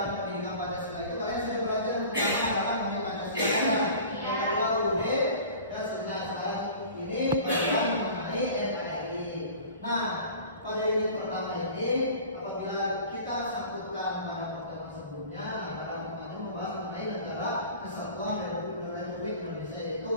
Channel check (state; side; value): inverted; both; correlation -0.42